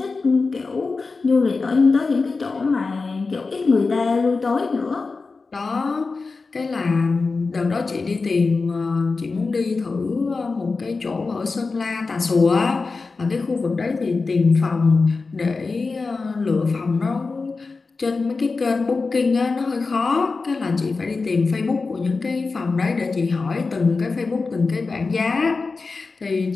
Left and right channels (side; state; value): right; quieter; 4.1 dB